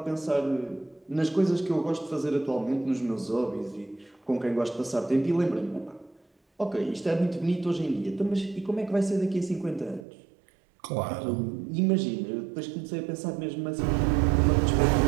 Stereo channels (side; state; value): left; drops out; at 10.1 s